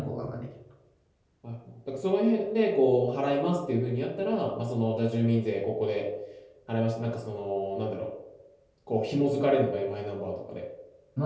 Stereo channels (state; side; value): identical; both; correlation 1.00